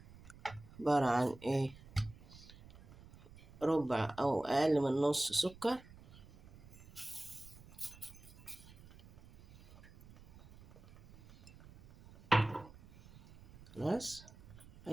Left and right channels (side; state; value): right; noise; rumble, 20 dB below the sound